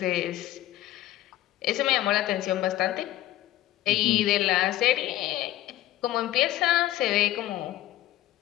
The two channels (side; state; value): right; quieter; 14.7 dB